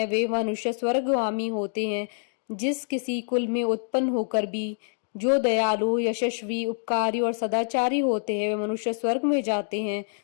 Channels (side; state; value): right; silent; digital silence